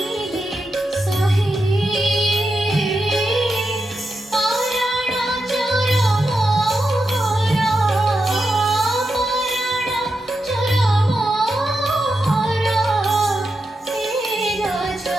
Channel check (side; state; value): both; normal; correlation 0.87